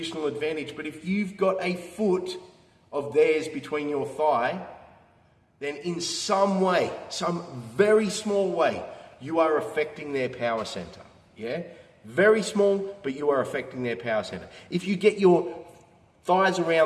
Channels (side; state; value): both; identical; correlation 1.00